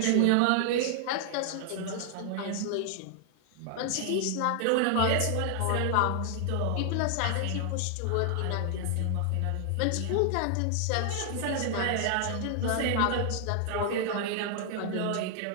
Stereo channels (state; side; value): different; both; correlation 0.00